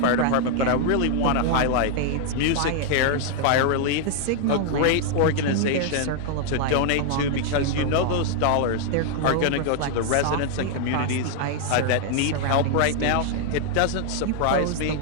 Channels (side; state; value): both; different; correlation 0.00